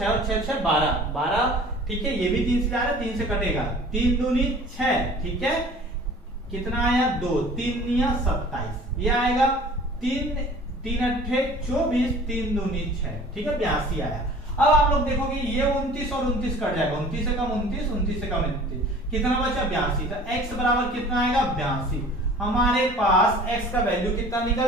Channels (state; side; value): normal; both; correlation 0.46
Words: और 6 6 12, ठीक है ये भी 3 से जा रहा है, 3 से कटेगा, 3 दूनी 6, ठीक है कितना आया 2, 3 निया 27, ये आएगा 3 अट्ठे 24, 3 दूनी 6, ठीक है 82 आया। अब आप लोग देखोगे ये 29 और 29 कट जाएगा, 29 से कम 29, 29 से कम 29, कितना बचा 82, तो x बराबर कितना आएगा 82। हमारे पास x का वैल्यू कितना निकल